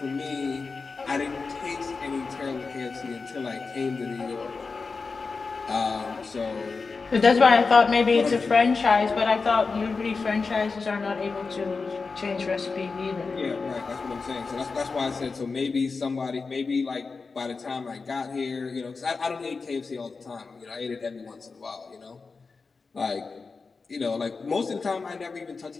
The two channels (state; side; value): quieter; right; 4.5 dB